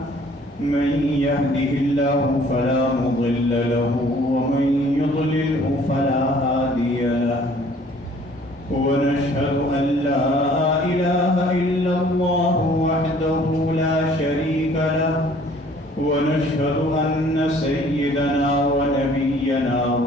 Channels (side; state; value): both; normal; correlation 0.56